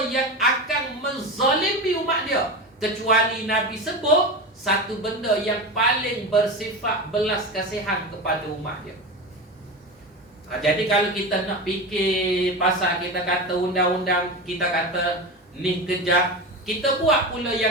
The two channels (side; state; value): both; normal; correlation 0.23